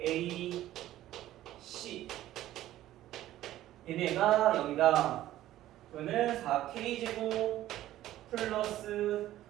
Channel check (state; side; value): quieter; left; 14.0 dB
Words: 4A C 얘네가 0이다. 그러면 4K 제곱 플러스